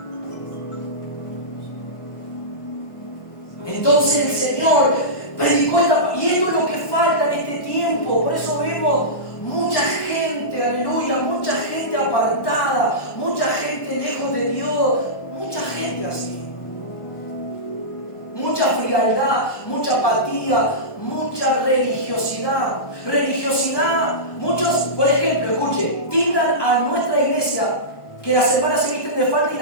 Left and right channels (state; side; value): late; right; 1.2 ms